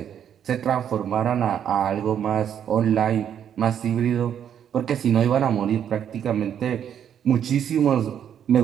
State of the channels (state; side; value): quieter; left; 9.1 dB